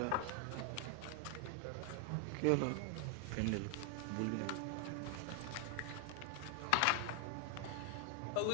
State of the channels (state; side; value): different; both; correlation 0.00